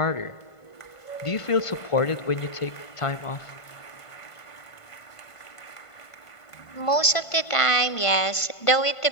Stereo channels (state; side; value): late; right; 1.5 ms